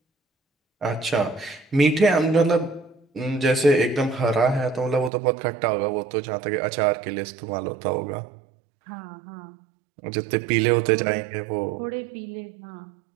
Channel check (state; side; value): drops out; left; at 5.1 s